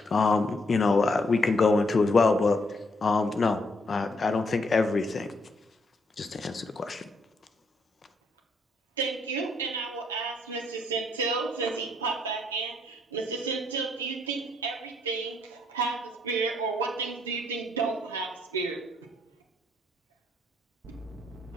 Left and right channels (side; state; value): both; normal; correlation 0.72